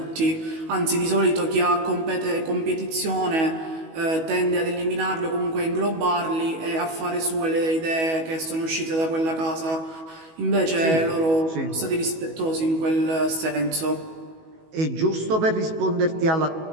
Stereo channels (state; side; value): late; left; 19 ms